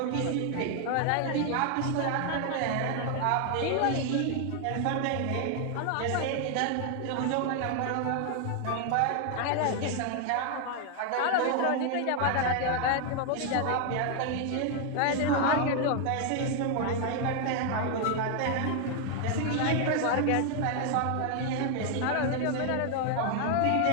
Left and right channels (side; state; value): both; different; correlation 0.00